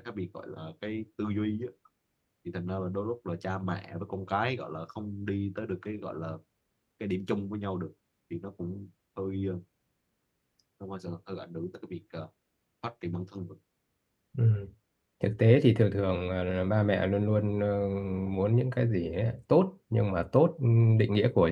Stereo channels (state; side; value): identical; both; correlation 1.00